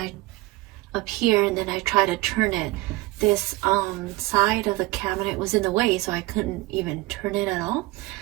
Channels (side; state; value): left; quieter; 20.2 dB